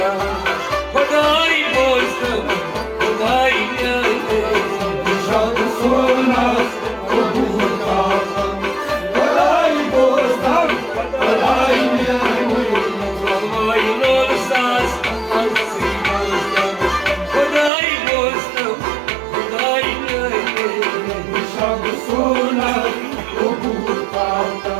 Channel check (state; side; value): drops out; left; at 17.7 s